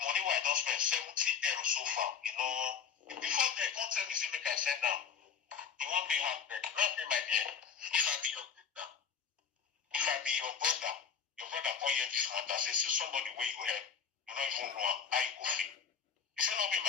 money where I don't spend 70 euros so far, you know. Before they can't tell me, say, make I send down. You won't pay half back. Not pay my dear. If I be your sister, if I be your brother can't hear this matter, say, see somebody where you help, you don't even know how you go feel. You say, not be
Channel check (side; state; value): right; quieter; 7.1 dB